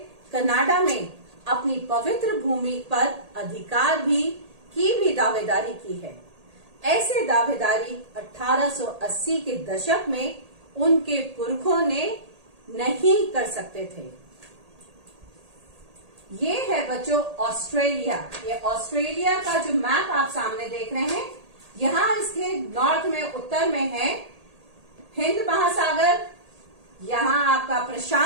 कनाडा में अपनी पवित्र भूमि पर अधिकार की भी दावेदारी की है। ऐसे दावेदारी 1880 के दशक में उनके पुरखों ने नहीं कर सकते थे। ये है बच्चों ऑस्ट्रेलिया। ये ऑस्ट्रेलिया का जो मैप आप सामने देख रहे हैं, यहाँ इसके नॉर्थ में, उत्तर में है हिंद महासागर, यहाँ आपका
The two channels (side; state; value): left; late; 1.8 ms